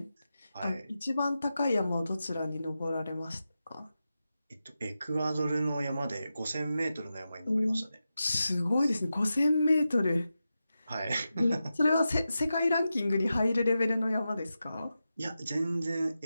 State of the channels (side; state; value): both; inverted; correlation -0.91